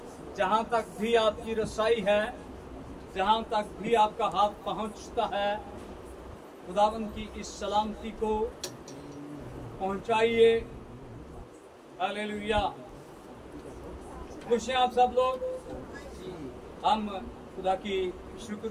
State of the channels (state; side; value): identical; both; correlation 1.00